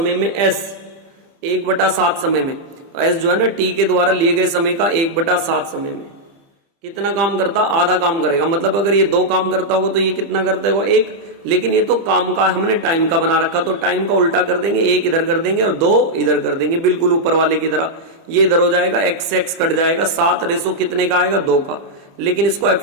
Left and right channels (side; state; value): left; late; 30 ms